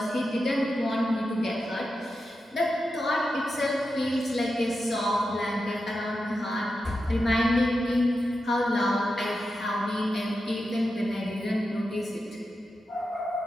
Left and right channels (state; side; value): normal; both; correlation 0.89